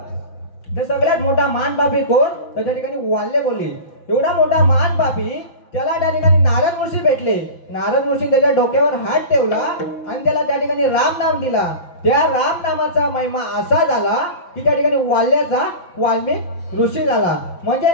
तर सगळ्यात मोठा महान पापी कोण तर त्या ठिकाणी वाल्य कोली. एवढा मोठा महान पापी त्याला त्या ठिकाणी नारद ऋषी भेटले. नारद ऋषी त्याच्या डोक्यावर हात ठेवला आणि त्याला त्या ठिकाणी राम नाम दिला. त्या राम नामाचा महिमा असा झाला की त्या ठिकाणी वाल्याचा वाल्मिक ऋषी झाला. म्हणजे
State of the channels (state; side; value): late; right; 5.9 ms